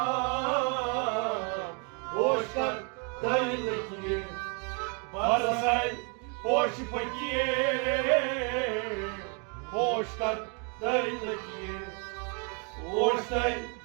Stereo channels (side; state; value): left; quieter; 36.5 dB